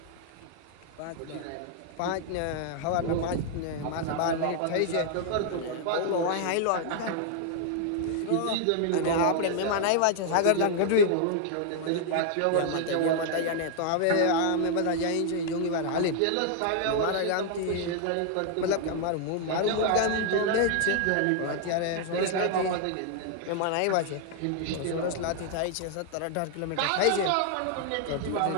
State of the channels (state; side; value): different; both; correlation 0.00